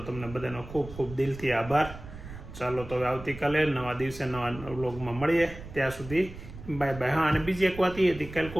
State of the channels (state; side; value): noise; right; rumble, 14 dB below the sound